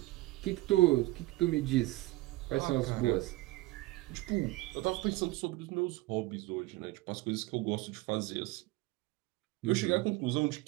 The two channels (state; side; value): quieter; left; 19.7 dB